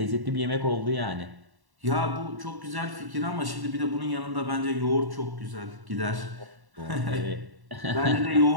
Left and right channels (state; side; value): late; left; 1.1 ms